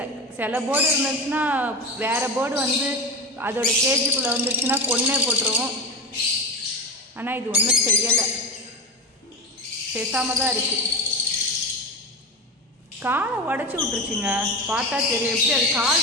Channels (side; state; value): both; normal; correlation 0.23